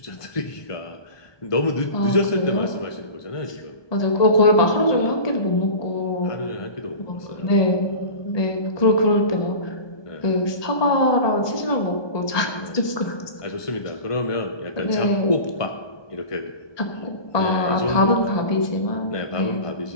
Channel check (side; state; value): right; late; 1.2 ms